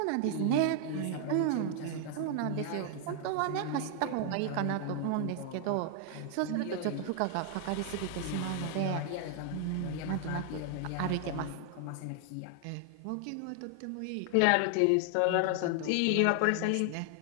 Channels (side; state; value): both; different; correlation 0.00